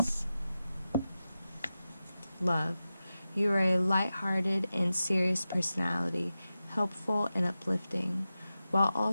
Love. You are a light-hearted and serious personality, helpful and uplifting, while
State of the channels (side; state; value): both; inverted; correlation -0.93